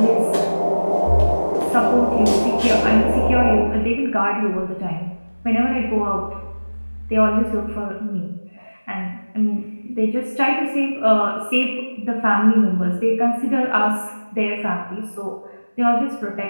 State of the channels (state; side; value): inverted; both; correlation -1.00